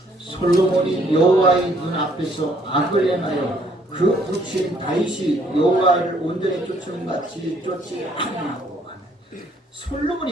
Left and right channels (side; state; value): both; normal; correlation 0.65